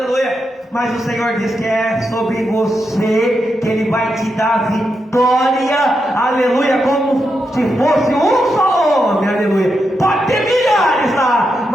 Mas o Senhor diz que é sobre você que Ele vai te dar vitória, aleluia, como se fosse um só homem, aleluia. Pode ter milhares lá,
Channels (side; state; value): both; normal; correlation 0.85